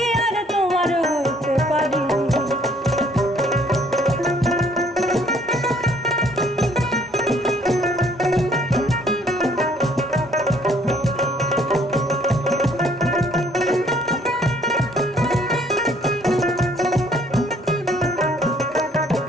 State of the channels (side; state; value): both; normal; correlation 0.61